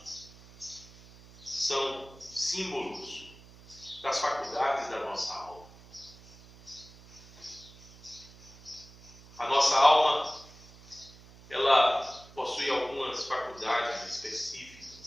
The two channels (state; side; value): noise; right; hum, 21 dB below the sound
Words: são símbolos das faculdades da nossa alma. A nossa alma, ela possui algumas faculdades